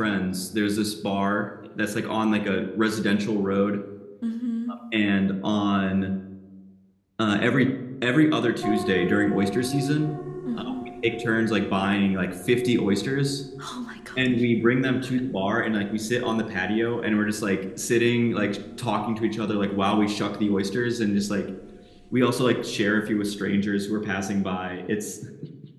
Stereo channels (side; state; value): both; identical; correlation 1.00